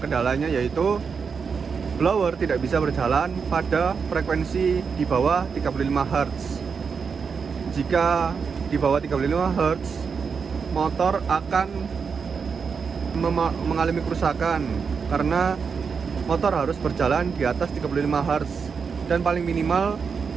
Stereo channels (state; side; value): quieter; left; 5.8 dB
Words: yaitu blower tidak bisa berjalan pada frekuensi di bawah 35 Hz. Jika di bawah 35 Hz, motor akan mengalami kerusakan karena motor harus berjalan di atas 35 Hz dan paling minimal